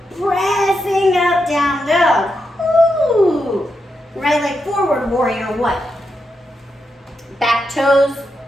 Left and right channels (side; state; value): both; normal; correlation 0.85